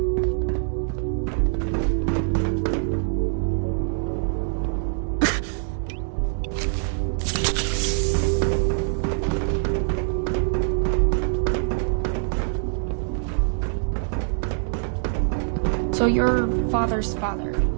So you're father's father,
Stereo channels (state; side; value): silent; left; digital silence